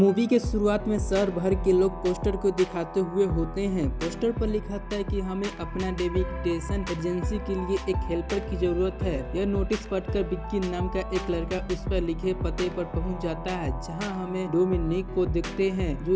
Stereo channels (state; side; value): identical; both; correlation 1.00